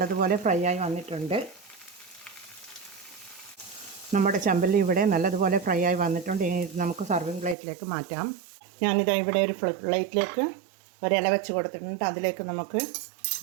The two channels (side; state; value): left; drops out; at 7.6 s